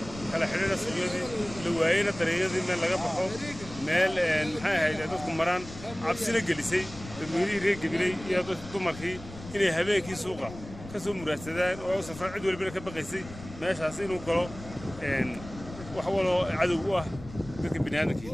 على حدانا سجودي لوعينا تريزي من لقى بحوم مال هاي هذا مران عبسنا جلسي المدير هيك قبلي يا تمرخي إني هباكي سوقه كسو مراسدان أو سفر عدو اللي بينك بقيسي ماشي حاسين وقالوا وحولوا عدو ذاك البنيان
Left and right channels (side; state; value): left; noise; rumble, 15 dB below the sound